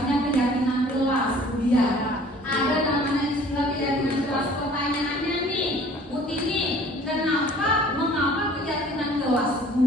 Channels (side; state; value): both; normal; correlation 0.51